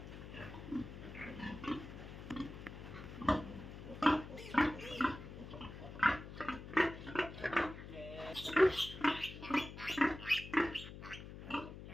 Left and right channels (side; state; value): left; noise; hum, 12 dB below the sound